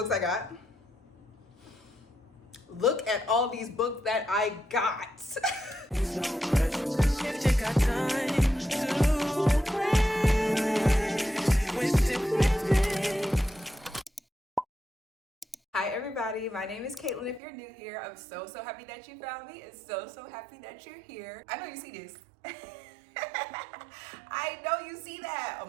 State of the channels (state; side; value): drops out; left; at 17.4 s